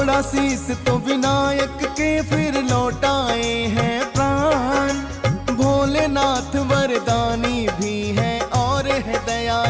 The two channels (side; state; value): both; identical; correlation 1.00